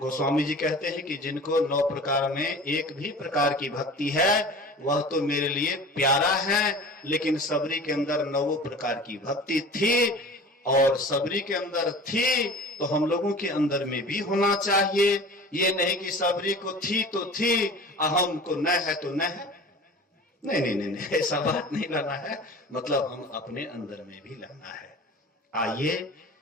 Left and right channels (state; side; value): normal; both; correlation 0.39